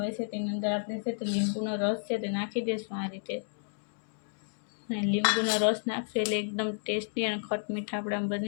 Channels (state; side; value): silent; right; digital silence